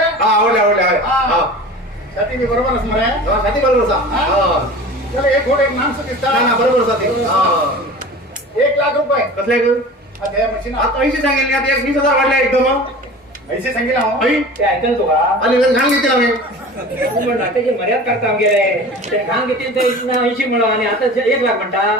आवडले हा साठी मी बरोबर असणार आहे साठी बरोबर हा चला एक घोड एक माणसं दिसतात ना बरोबर साठी 1 लाख रुपये कसले आता या मशीन आता 80 सांगेल आता 20,000 वाढले एकदम पैसे सांगितलं हो आई ते ऐकल तू का आणि घाण घेतील आम्ही तू म्हणला त्याची मर्याद करता गेले ते घाण घेतील ते 80 म्हणा आणि आता 1 लाख म्हणता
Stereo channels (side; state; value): both; normal; correlation 0.38